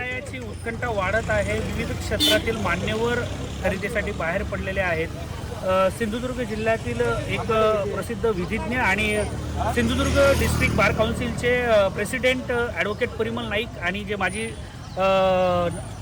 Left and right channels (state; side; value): identical; both; correlation 1.00